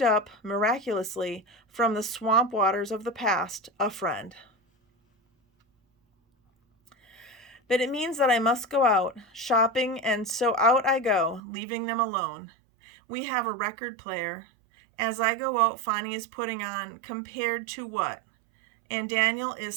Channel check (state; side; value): drops out; left; at 11.4 s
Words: up miraculously from the swamp waters of the past a friend. But it means that I must go out shopping, and so out I go, leaving them alone. We have a record player. As I go out, Fonnie is putting on Compared to What? And Daniel